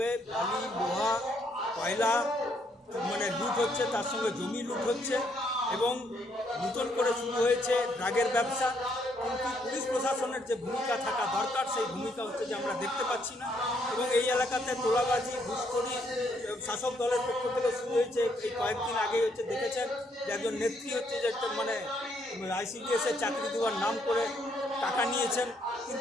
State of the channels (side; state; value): both; normal; correlation 0.72